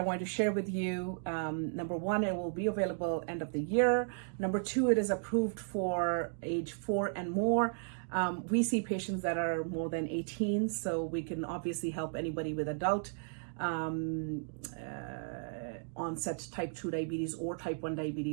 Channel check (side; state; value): left; silent; digital silence